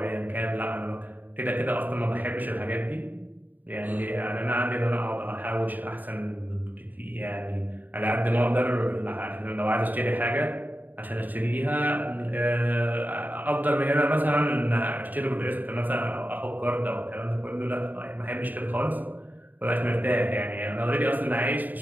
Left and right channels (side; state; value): left; late; 0.085 ms